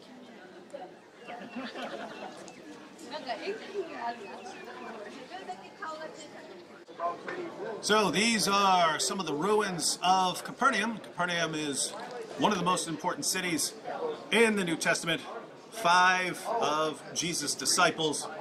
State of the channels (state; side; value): identical; both; correlation 1.00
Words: So these are some of the ruins of Capernaum. Capernaum is one of the most important cities in the New Testament. 5 of Jesus' disciples